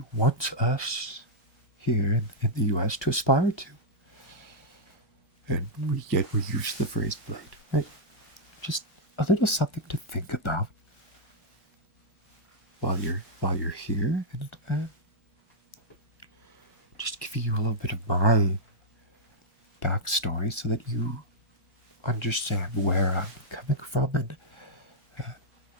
wants us here in the U.S. to aspire to. And we use the phrase blade, right? Just a little something to think about while you're here, and just giving you a little bit of my backstory so that you understand where I'm coming from, and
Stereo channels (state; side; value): normal; both; correlation -0.07